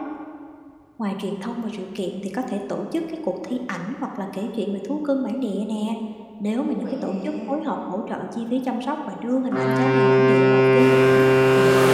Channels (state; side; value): identical; both; correlation 1.00